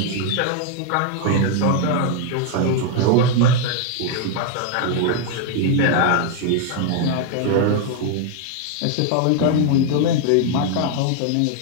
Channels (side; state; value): both; different; correlation 0.00